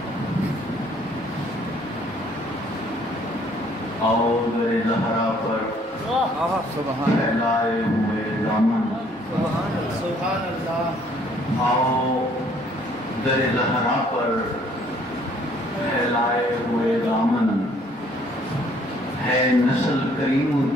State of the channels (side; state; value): both; normal; correlation 0.61